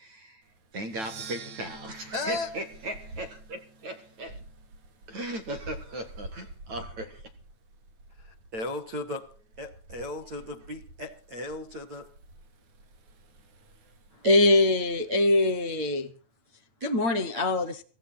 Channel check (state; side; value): late; left; 9.1 ms